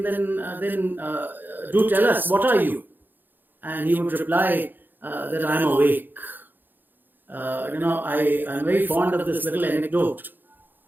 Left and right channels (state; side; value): late; left; 0.090 ms